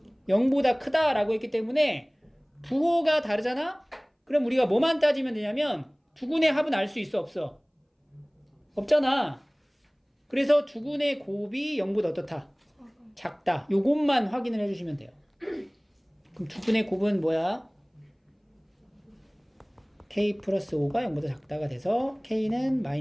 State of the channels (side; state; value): both; identical; correlation 1.00